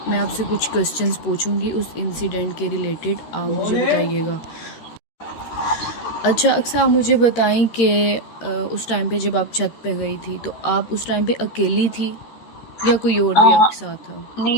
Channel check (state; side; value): late; right; 13 ms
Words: मैं आपसे कुछ क्वेश्चंस पूछूंगी उस इंसिडेंट के रिलेटेड, आप मुझे बताइएगा। अच्छा अक्सर, आप मुझे बताएं कि उस टाइम पे जब आप छत पे गई थी तो आप उस टाइम पे अकेली थी या कोई और भी हाँ, आपके साथ था?